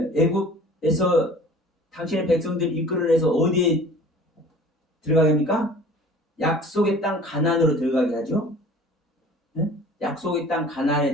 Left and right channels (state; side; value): normal; both; correlation 0.46